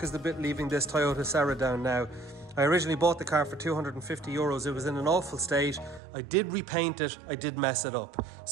is the bit leaving this Toyota Sera down now. I originally bought the car for 250 euros. It was in an awful state. I did repaint it, I did mess it up.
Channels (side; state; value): left; drops out; at 6.0 s